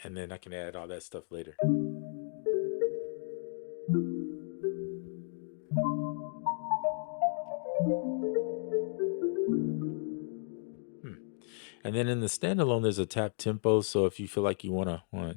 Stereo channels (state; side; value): silent; right; digital silence